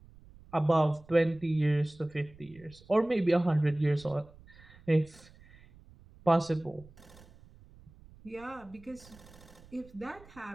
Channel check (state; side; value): noise; right; rumble, 23 dB below the sound